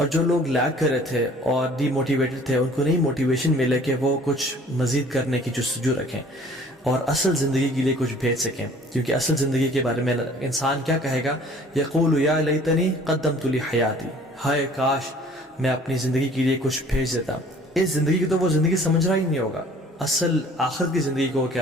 جو لوگ لیگ کر رہے تھے اور ڈی موٹیویٹڈ تھے، ان کو نئی موٹیویشن ملے کہ وہ کچھ مزید کرنے کی جستجو رکھیں اور اصل زندگی کے لیے کچھ بھیج سکیں، کیونکہ اصل زندگی کے بارے میں انسان کیا کہے گا؟ یقول یا لیتنی قدمت لی حیاتی، ہائے کاش میں اپنی زندگی کے لیے کچھ بھیج دیتا۔ اس زندگی کی تو وہ زندگی سمجھ رہا ہی نہیں ہوگا، اصل آخرت کی زندگی کو وہ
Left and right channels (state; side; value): normal; both; correlation 0.52